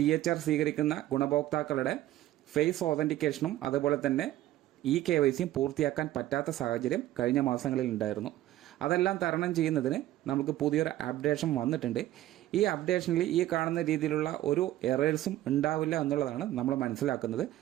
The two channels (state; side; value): quieter; left; 14.4 dB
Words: സ്വീകരിക്കുന്ന ഗുണഭോക്താക്കളുടെ ഫേസ് ഓതന്റിക്കേഷനും അതുപോലെ തന്നെ KYCയും പൂർത്തിയാക്കാൻ പറ്റാത്ത സാഹചര്യം കഴിഞ്ഞ മാസങ്ങളിൽ ഉണ്ടായിരുന്നു. അതെല്ലാം തരണം ചെയ്യുന്നതിന് നമുക്ക് പുതിയൊരു അപ്ഡേഷൻ വന്നിട്ടുണ്ട്. ഈ അപ്ഡേഷനിൽ ഈ കാണുന്ന രീതിയിലുള്ള ഒരു എറേഴ്സും ഉണ്ടാവില്ല എന്നുള്ളതാണ് നമ്മൾ മനസ്സിലാക്കുന്നത്.